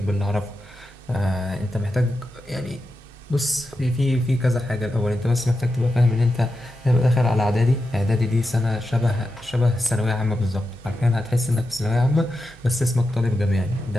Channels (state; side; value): normal; both; correlation 0.89